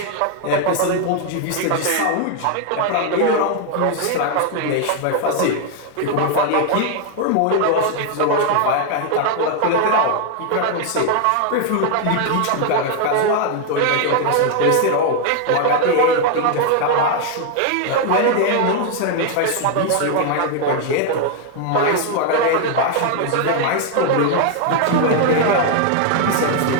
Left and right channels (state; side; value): different; both; correlation 0.00